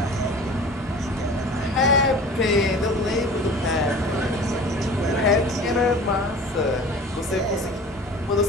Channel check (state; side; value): normal; both; correlation 0.42